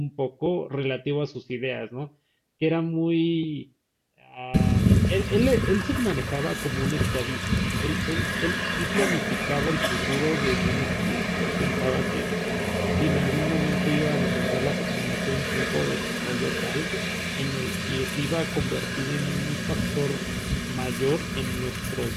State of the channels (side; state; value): both; identical; correlation 1.00